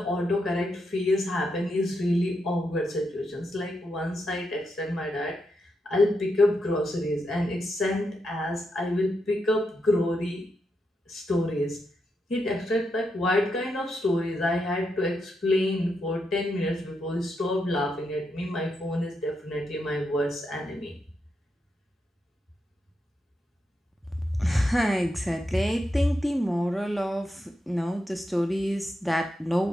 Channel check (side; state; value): both; normal; correlation 0.83